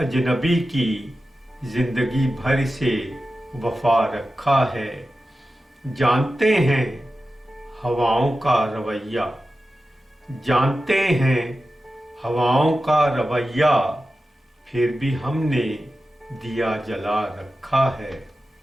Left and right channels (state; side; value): normal; both; correlation 0.93